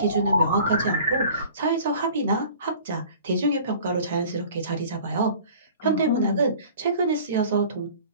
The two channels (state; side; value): inverted; both; correlation -0.46